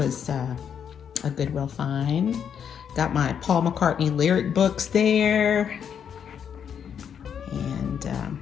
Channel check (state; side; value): quieter; right; 7.9 dB